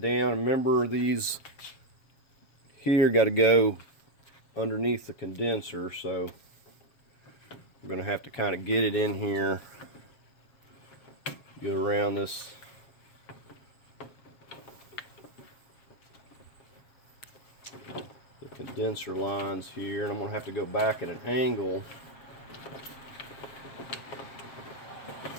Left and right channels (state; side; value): late; right; 7.4 ms